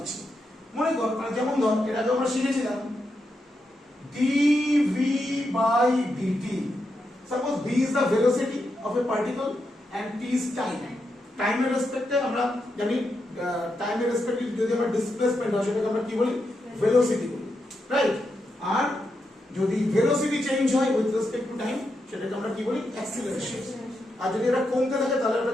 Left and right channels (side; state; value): both; normal; correlation 0.85